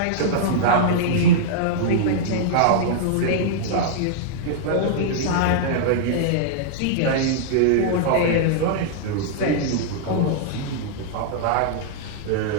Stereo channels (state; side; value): different; both; correlation -0.02